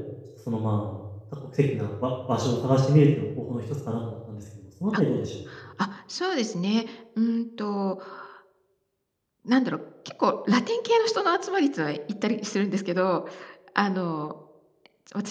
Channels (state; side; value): identical; both; correlation 1.00